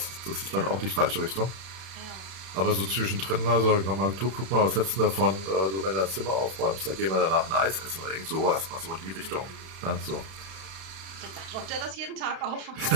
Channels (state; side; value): late; left; 31 ms